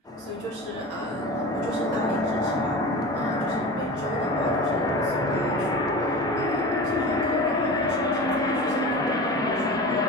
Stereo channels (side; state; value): both; normal; correlation 0.32